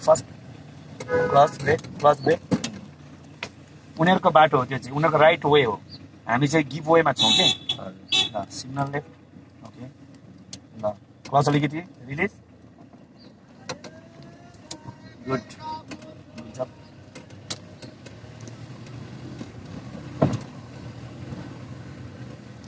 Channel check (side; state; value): both; identical; correlation 1.00